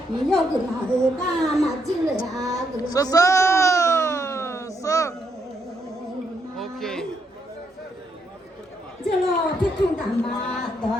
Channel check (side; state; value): both; normal; correlation 0.76